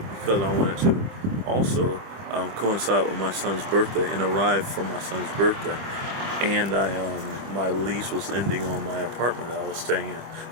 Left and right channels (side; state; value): left; late; 26 ms